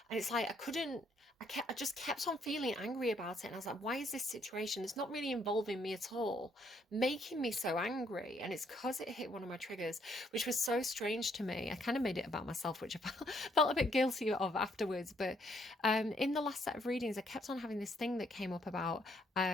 And it's like I just kept on feeling angry about it. And I was like, why is this situation? It's not really involving me at all, making me so angry. And it's because it hit one of my triggers, which was so strange to me. I kind of made it about myself, which I felt a bit guilty of afterwards. But in the last set of readings, I kept on having this thing that came up about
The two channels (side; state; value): both; normal; correlation 0.70